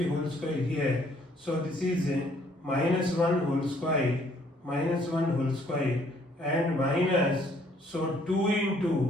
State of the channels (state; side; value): normal; both; correlation 0.64